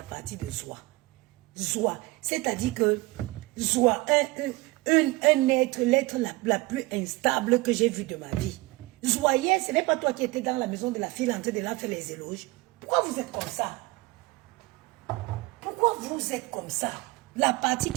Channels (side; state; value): left; quieter; 21.9 dB